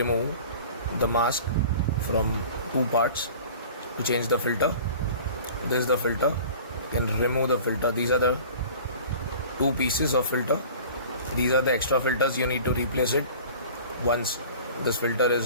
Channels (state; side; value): inverted; both; correlation -0.42